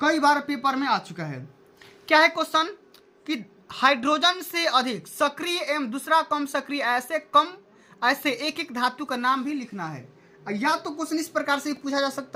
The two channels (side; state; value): both; identical; correlation 1.00